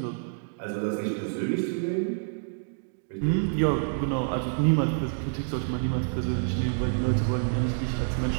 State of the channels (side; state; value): left; silent; digital silence